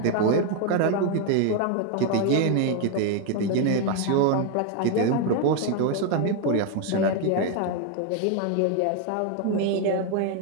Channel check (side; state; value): both; different; correlation 0.01